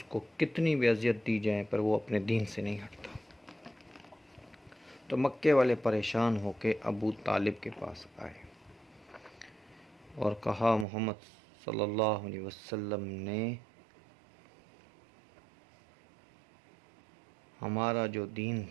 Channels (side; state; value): left; drops out; at 10.9 s